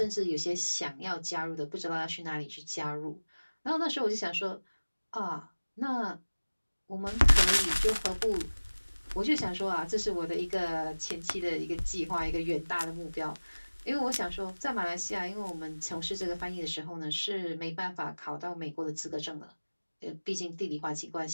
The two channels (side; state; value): both; inverted; correlation -1.00